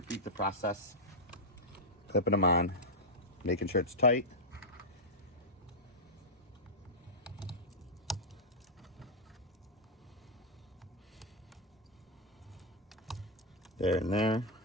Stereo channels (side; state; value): both; normal; correlation -0.07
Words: the process, clipping them on, making sure it's tight. There and there,